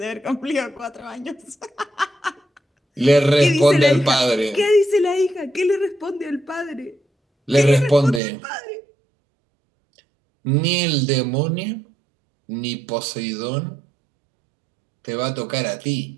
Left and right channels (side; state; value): left; drops out; at 8.2 s